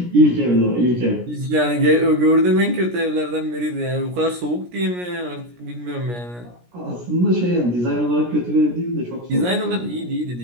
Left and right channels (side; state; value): left; late; 17 ms